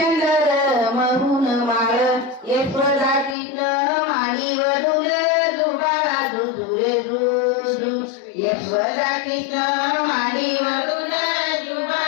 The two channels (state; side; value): drops out; right; at 3.4 s